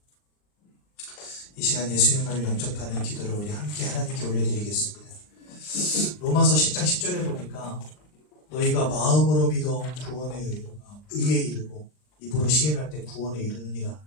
이 시간 예수님을 영접하는 기도를 우리 함께 하나님께 올려드리겠습니다. 로마서 10장 10절에 보니까 너희가 마음으로 믿어 의에 이르고 입으로 시인할 때 구원에 이르느니라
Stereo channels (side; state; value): right; late; 39 ms